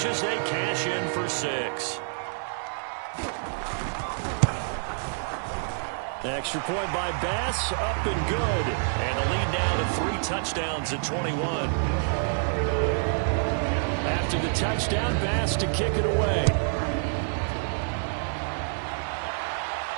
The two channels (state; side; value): silent; left; 60 dB below the other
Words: as they cash in for 6. Extra point by Bass, up and good. And the lead now to 3 touchdowns at 21. After the touchdown, Bass to kick it away.